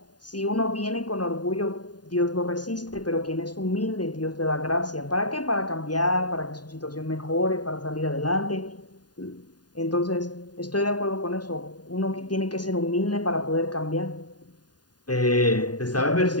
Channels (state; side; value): late; right; 0.70 ms